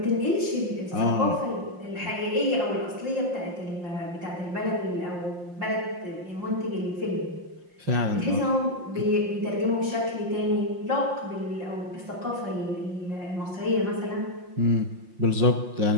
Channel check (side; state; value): left; late; 5.6 ms